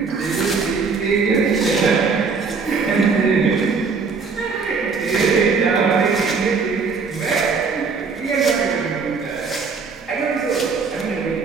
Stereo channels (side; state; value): left; quieter; 5.0 dB